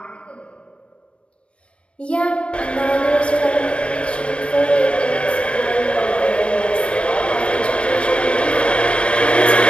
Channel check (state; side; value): late; right; 0.059 ms